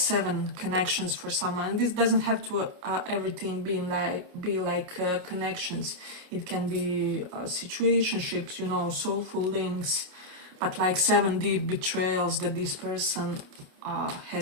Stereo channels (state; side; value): late; left; 28 ms